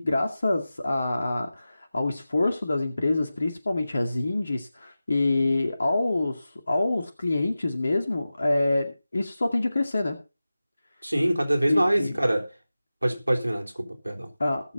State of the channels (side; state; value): both; inverted; correlation -0.95